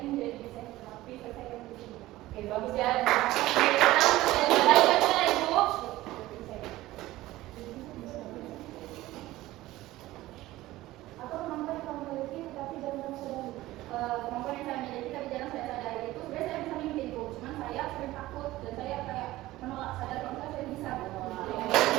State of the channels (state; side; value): quieter; left; 17.0 dB